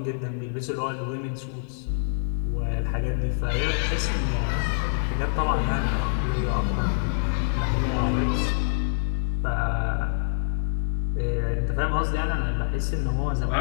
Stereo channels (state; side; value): silent; right; digital silence